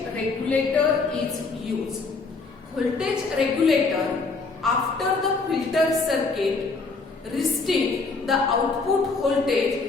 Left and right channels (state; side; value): quieter; right; 4.1 dB